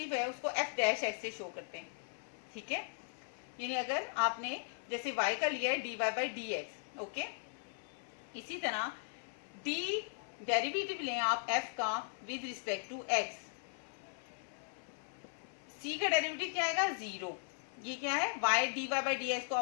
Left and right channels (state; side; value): silent; right; 52 dB below the other